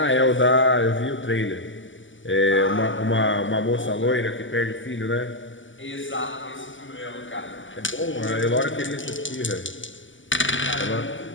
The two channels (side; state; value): right; late; 0.55 ms